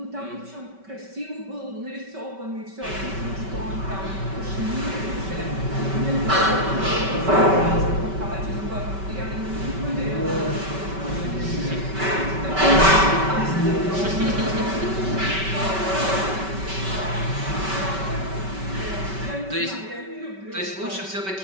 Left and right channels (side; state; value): left; late; 5.2 ms